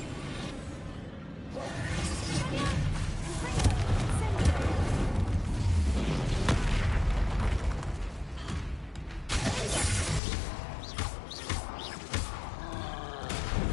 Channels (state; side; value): drops out; right; at 10.2 s